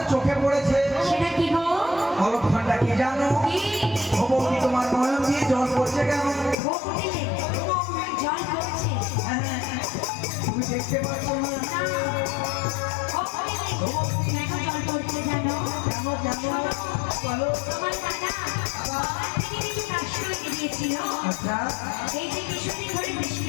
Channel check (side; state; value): right; drops out; at 6.6 s